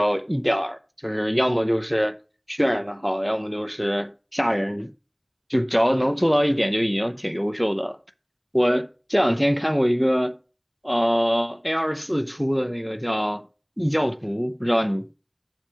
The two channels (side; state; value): both; identical; correlation 1.00